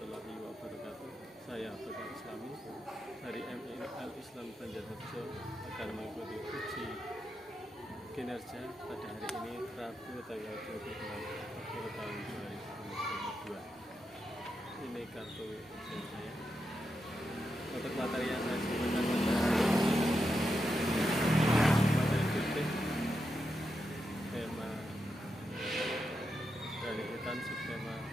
wabarakatuh. Saya Abdul Islami dari MIL Islam Banjarnegara akan mengikuti uji kinerja pada hari ini Rabu tanggal 26 Oktober tahun 2022. Ini kartu ujian saya. Untuk materi yang saya sebutkan materi fikih, tema dari hutan, subtema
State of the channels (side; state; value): both; normal; correlation 0.86